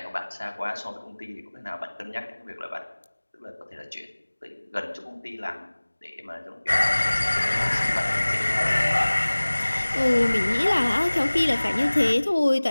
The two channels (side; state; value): both; inverted; correlation -1.00